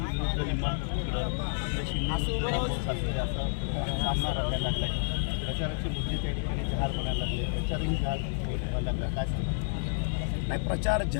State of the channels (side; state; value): right; silent; digital silence